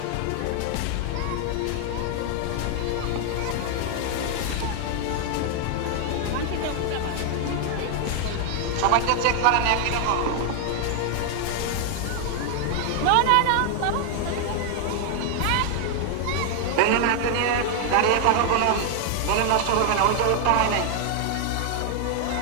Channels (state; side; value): different; both; correlation 0.00